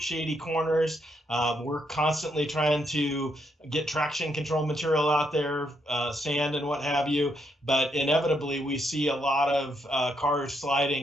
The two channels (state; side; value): normal; both; correlation 0.76